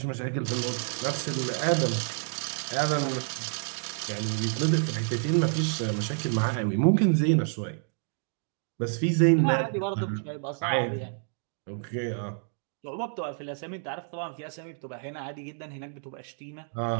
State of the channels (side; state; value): left; silent; digital silence